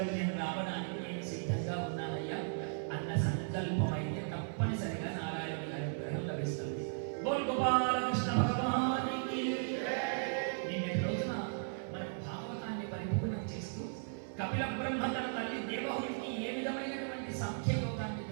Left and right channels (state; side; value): silent; left; 53 dB below the other